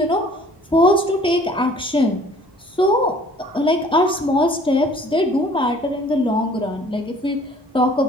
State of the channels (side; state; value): both; normal; correlation 0.54